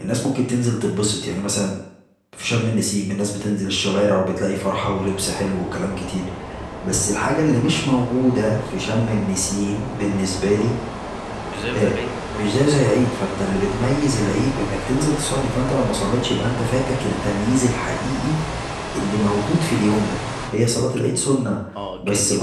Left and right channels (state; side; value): identical; both; correlation 1.00